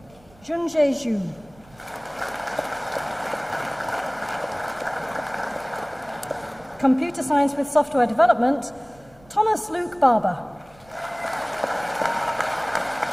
Zhengzhe Zhu. Computer Science with Software Development, Thomas Luke Barber.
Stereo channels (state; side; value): noise; right; rumble, 27 dB below the sound